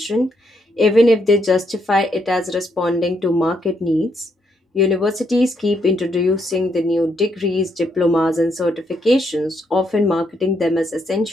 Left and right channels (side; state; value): both; normal; correlation 0.76